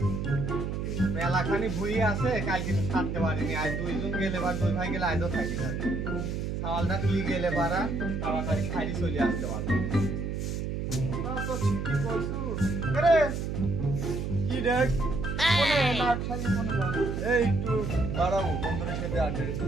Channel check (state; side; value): noise; right; hum, 3 dB below the sound